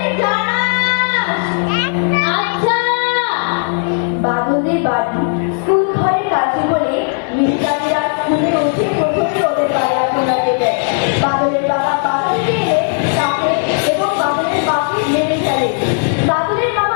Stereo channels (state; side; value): silent; right; digital silence